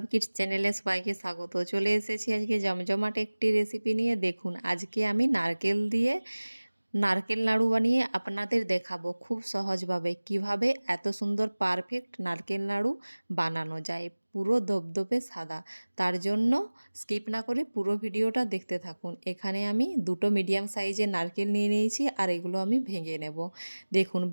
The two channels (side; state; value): both; inverted; correlation -1.00